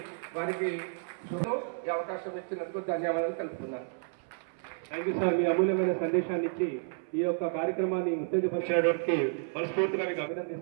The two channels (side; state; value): left; silent; 56 dB below the other